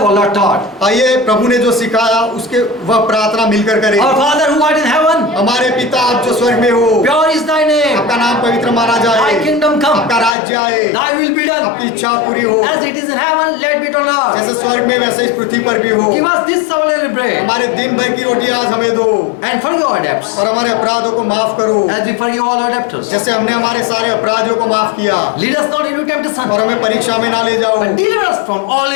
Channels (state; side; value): drops out; right; at 10.3 s